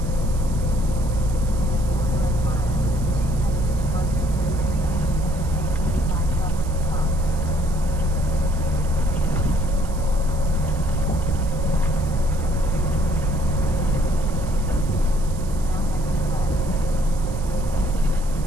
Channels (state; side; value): noise; right; hiss, 18 dB below the sound